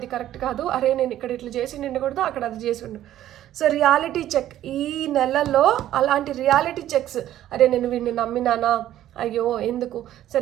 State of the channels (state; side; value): quieter; left; 12.6 dB